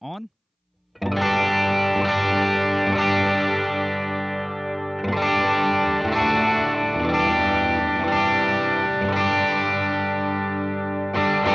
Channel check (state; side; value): identical; both; correlation 1.00